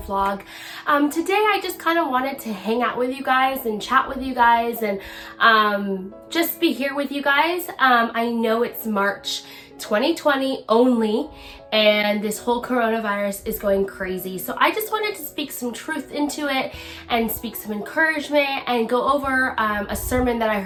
Today I just kind of wanted to hang out with you guys and chat with you guys and just be here with you guys. I know it's March 2020 only, and this whole coronavirus is going crazy. So I just wanted to speak some truth into it and speak some encouragement and go over a sermon that I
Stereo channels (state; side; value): identical; both; correlation 1.00